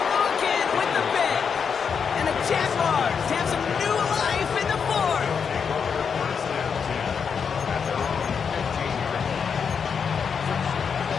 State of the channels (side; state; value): right; quieter; 6.5 dB